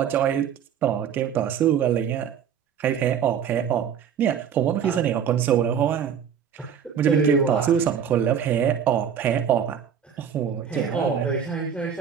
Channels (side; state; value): left; quieter; 8.1 dB